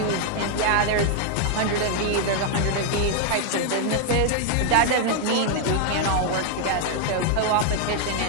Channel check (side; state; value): both; different; correlation 0.00